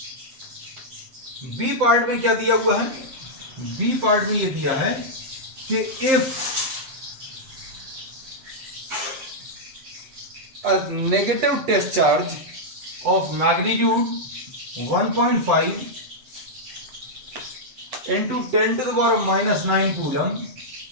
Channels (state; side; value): late; left; 7.7 ms